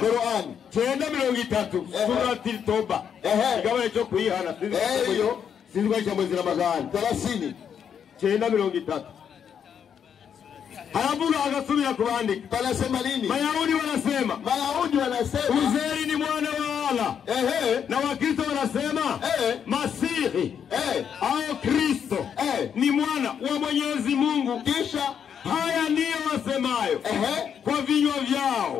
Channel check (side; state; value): right; quieter; 7.9 dB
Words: 9:30 surati Toba. Igawa cyo kuyihana hiyo sizwa cha mwezi Ramadhani 30 9:30. Halafu akasubira kuandika. Wanasema nini? Mayahudi wanasema Uzeri ni mwana wa Allah. Na Wakristo wanasema Masihi au Kristo ni mwana wa Mwenyezi Mungu. Kisha haya ndiyo wasemayo kwa vinywa